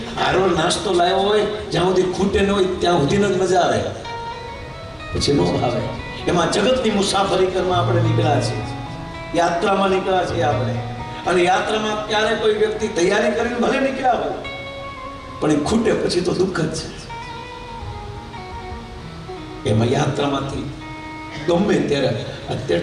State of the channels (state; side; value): identical; both; correlation 1.00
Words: હારો નાસ્તો લાવ્યો હોય, જ્યાં સુધી ખૂટે ન હોય ત્યાં સુધીનો જ મજા આવે, પછી નો આવે. એમાં જગતની મુસાફરી કરવા આપણે નીકળ્યા છીએ, યાત્રામાં નીકળ્યા છીએ આપણે. અને યાત્રામાં ક્યારે કોઈ વ્યક્તિ તૈયારી કરીને ભલે નીકળ્યા હોય, પણ એ ખૂટે પછી તો દુઃખ જ છે. એમાં યાત્રામાંથી ગમે ત્યારે,